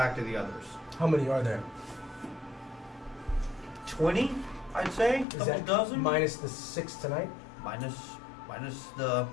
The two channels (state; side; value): drops out; right; at 5.2 s